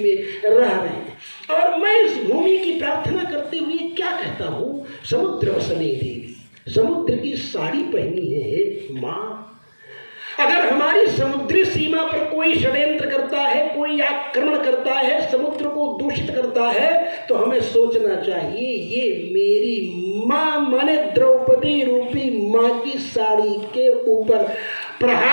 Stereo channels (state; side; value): inverted; both; correlation -1.00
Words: रह रहे हैं। और मैं इस भूमि की प्रार्थना करते हुए क्या कहता हूँ? समुद्र वसने देवी, समुद्र की साड़ी पहनी है माँ। अगर हमारी समुद्री सीमा पर कोई षड्यंत्र करता है, कोई आक्रमण करता है, समुद्र को दूषित करता है, तो हमें सोचना चाहिए ये मेरी माँ माने द्रौपदी रूपी माँ की साड़ी के ऊपर